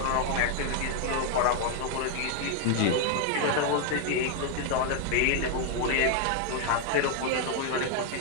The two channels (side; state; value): both; different; correlation 0.00